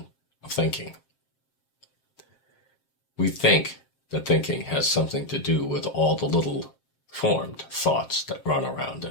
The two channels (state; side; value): late; right; 7.6 ms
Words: of thinking. We think that thinking has something to do with all the little formed thoughts that run around